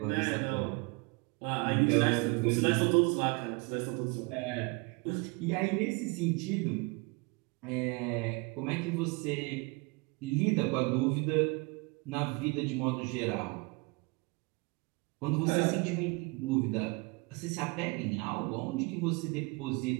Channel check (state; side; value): quieter; left; 28.4 dB